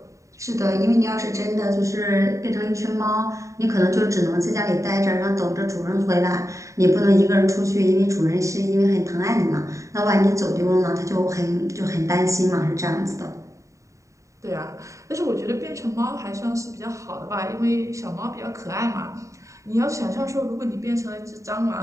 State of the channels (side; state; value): left; late; 0.15 ms